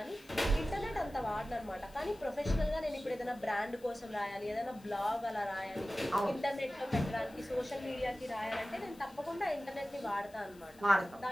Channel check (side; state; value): left; noise; hiss, 26 dB below the sound